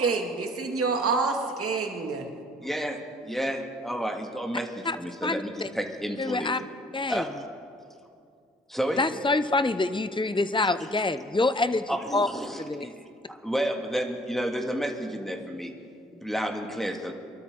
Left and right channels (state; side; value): normal; both; correlation 0.57